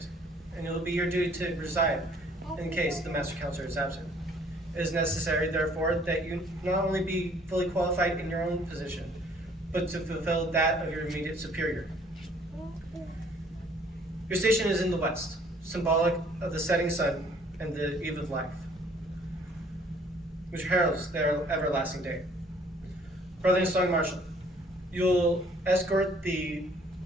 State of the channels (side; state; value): both; normal; correlation 0.59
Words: and it will be your duty to preside in case the master counselor is absent. It is necessary, therefore, that you not only be fully qualified in your own position, but to fulfill that of your immediate superior. Your station is in the west, symbolic of the setting sun and the eve of life, which heralds their everlasting day. Brother Song Marshall, you'll escort the